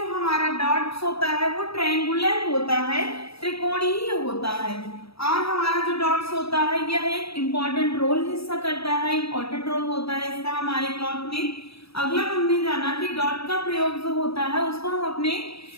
हमारा डॉट्स होता है वो ट्रायंगुलर होता है, त्रिकोणीय होता है। और हमारा जो डॉट्स होता है यह एक इम्पॉर्टेंट रोल हिस्सा करता है, इम्पॉर्टेंट रोल होता है इसका हमारे क्लॉथ में। अगला हमने जाना कि डॉट का प्रयोग जो होता है उसको हम अपने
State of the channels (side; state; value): right; late; 0.77 ms